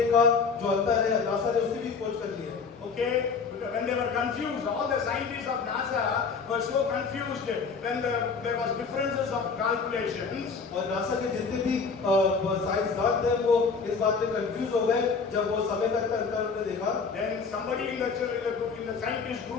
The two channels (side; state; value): right; quieter; 5.1 dB